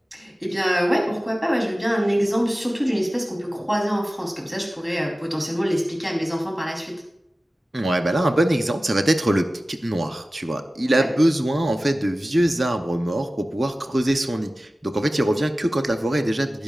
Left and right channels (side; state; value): both; normal; correlation 0.96